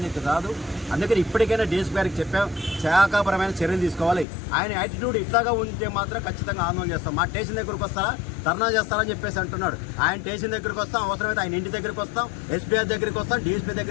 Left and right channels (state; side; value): drops out; right; at 4.2 s